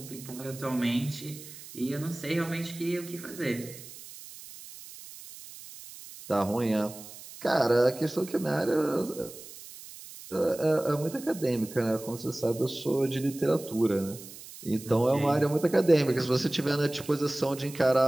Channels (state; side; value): noise; right; hiss, 16 dB below the sound